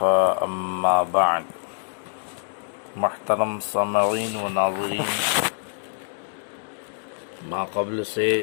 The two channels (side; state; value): right; silent; 62 dB below the other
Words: اما بعد. محترم سامعین و ناظرین، ما قبل سے